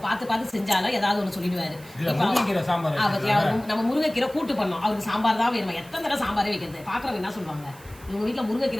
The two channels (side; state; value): right; noise; hiss, 22 dB below the sound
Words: பார்த்து செஞ்சாலும் ஏதாவது ஒன்று சொல்லிடுவாரு. நம்ம முருங்கைக்கீரை கூட்டு பண்ணோம், அவருக்கு சாம்பார் தான் வேணுமா? எத்தனை தடவை சாம்பாரே வைக்கிறது? பாக்குறவங்க என்ன சொல்லுவாங்க, இவங்க வீட்டுல